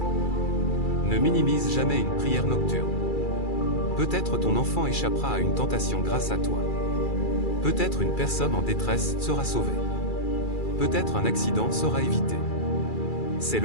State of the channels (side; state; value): right; late; 2.3 ms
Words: Ne minimise jamais une prière nocturne. Peut-être ton enfant échappera à une tentation grâce à toi. Peut-être une personne en détresse sera sauvée. Peut-être un accident sera évité. C'est